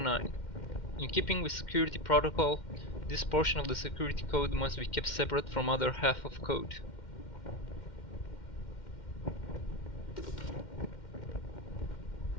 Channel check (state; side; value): late; right; 2.1 ms